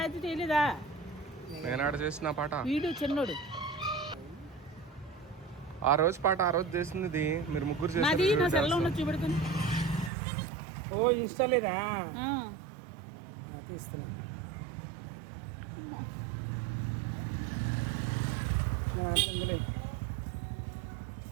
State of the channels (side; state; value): left; drops out; at 10.1 s